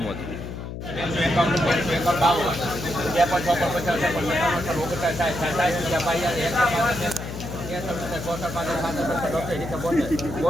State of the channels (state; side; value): noise; left; hum, 8 dB below the sound